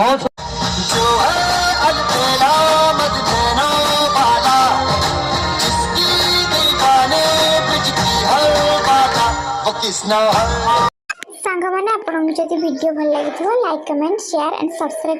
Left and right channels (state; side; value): identical; both; correlation 1.00